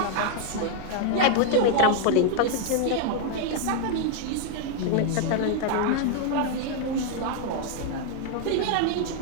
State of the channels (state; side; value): different; both; correlation 0.00